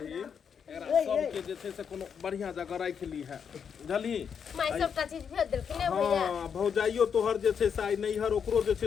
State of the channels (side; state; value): right; quieter; 7.1 dB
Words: एकरा सब के जे छै से कोनो बढ़िया जगह राख ली है, बुझली? माई सबटा चीज भेज देलखिन ने भैया। हां भौजाइयो तोहर जे छै से आई नैहर ओकरो जे